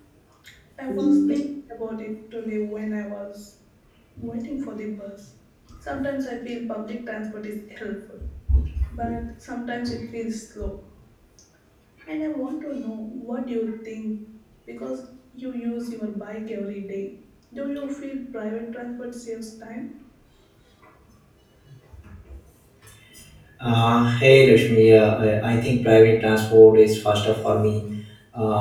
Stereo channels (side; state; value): both; identical; correlation 1.00